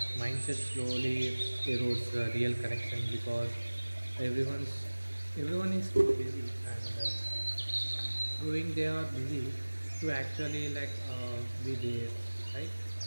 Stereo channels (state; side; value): inverted; both; correlation -1.00